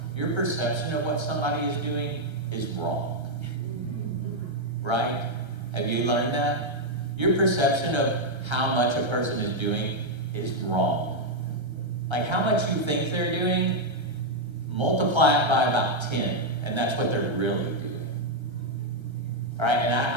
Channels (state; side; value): late; left; 1.3 ms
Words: Your perception of what somebody is doing is wrong. Right? Have you learned that? Your perception of how much a person is doing is wrong. Like how much you think they're doing, multiply it by about 10, and that's what they're really doing. All right, and